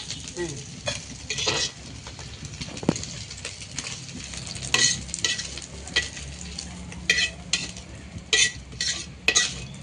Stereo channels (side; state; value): both; identical; correlation 1.00